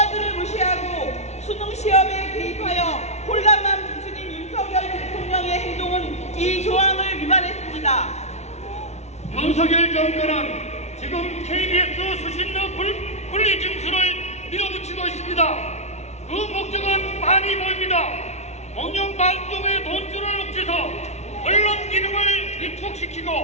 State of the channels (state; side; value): late; right; 0.32 ms